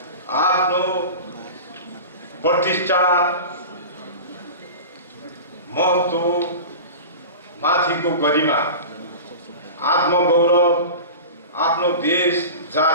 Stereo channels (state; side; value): inverted; both; correlation -0.32